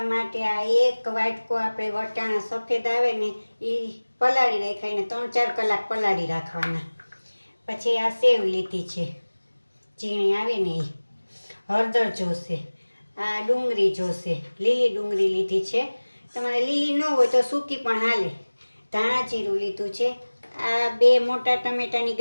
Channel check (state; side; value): inverted; both; correlation -1.00